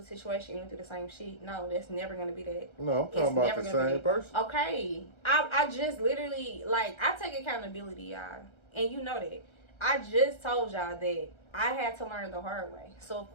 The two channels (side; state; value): right; late; 1.3 ms